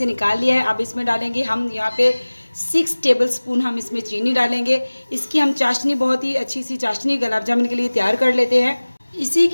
निकाल लिया है। अब इसमें डालेंगे हम यहाँ पे 6 टेबलस्पून हम इसमें चीनी डालेंगे। इसकी हम चाशनी, बहुत ही अच्छी सी चाशनी गुलाब जामुन के लिए तैयार कर लेते हैं। इसी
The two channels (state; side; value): inverted; both; correlation -1.00